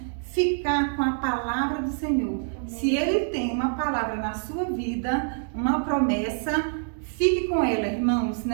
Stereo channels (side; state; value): left; silent; digital silence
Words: ficar com a palavra do Senhor. Amém. Se Ele tem uma palavra na sua vida, uma promessa, fique com ela, irmãos,